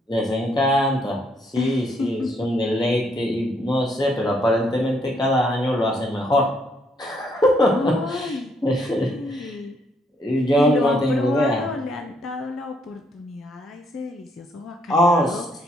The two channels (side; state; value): both; normal; correlation 0.71